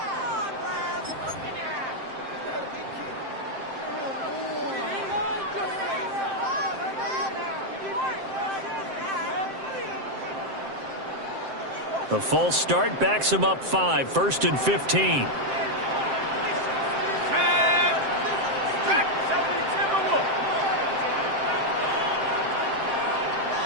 The false start backs him up 5, 1st and 15.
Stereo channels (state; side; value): late; left; 7.6 ms